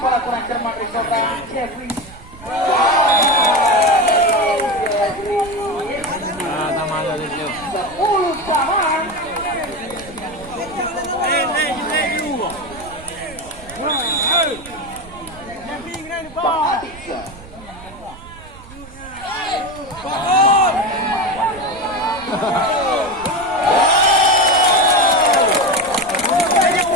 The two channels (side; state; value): right; noise; rumble, 18 dB below the sound